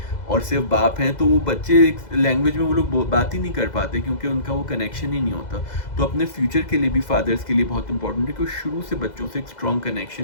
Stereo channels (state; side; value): late; right; 2.0 ms